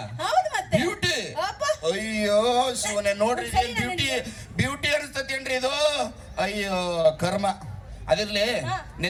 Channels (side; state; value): both; identical; correlation 1.00